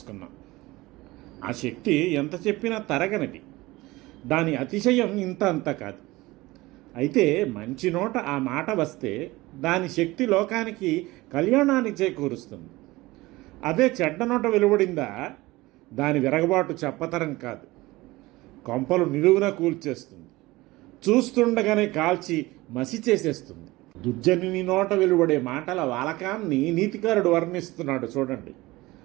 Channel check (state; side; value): quieter; left; 20.1 dB